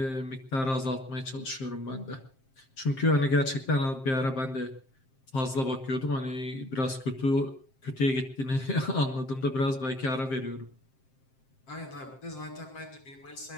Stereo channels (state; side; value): late; right; 7.6 ms